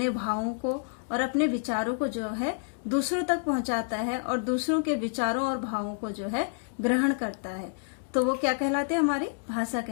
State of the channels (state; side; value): silent; right; digital silence